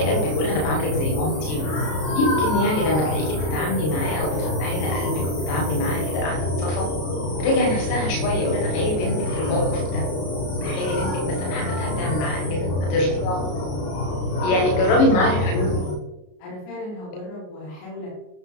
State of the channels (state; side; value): late; right; 33 ms